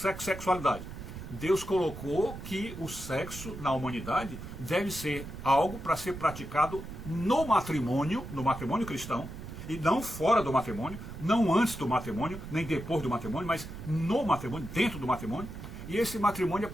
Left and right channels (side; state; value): right; noise; rumble, 10 dB below the sound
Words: Deus colocou que o sexo na humanidade deve ser algo para ser praticado no matrimônio cristão, e não fora do matrimônio, não antes do matrimônio, nem depois do matrimônio, mas no matrimônio, dentro do matrimônio. E esse matrimônio é